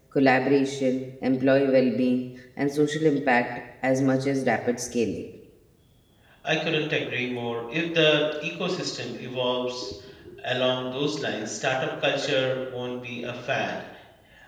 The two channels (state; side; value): identical; both; correlation 1.00